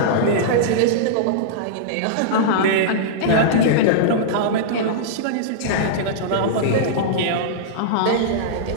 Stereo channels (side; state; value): both; different; correlation -0.03